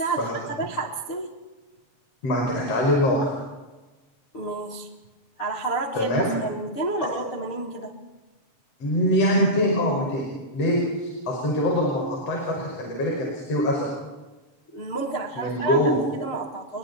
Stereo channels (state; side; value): late; right; 6.7 ms